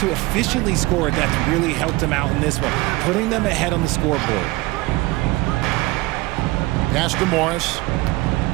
efficiently score, that's really helped him out in this one, putting them ahead on the scoreboard. Pass to Morris.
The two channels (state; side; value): quieter; left; 21.4 dB